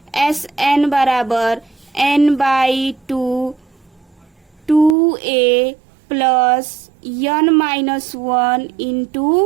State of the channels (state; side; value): drops out; left; at 5.0 s